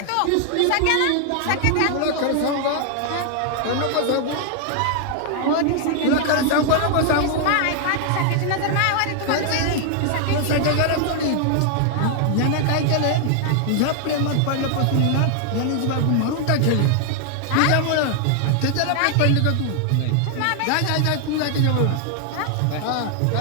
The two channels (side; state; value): both; different; correlation 0.00